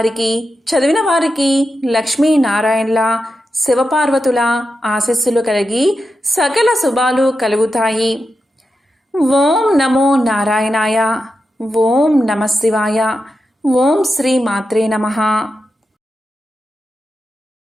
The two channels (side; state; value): both; normal; correlation 0.89